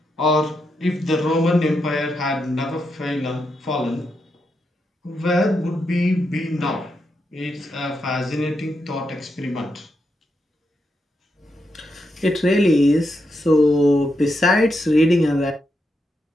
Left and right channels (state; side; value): normal; both; correlation 0.83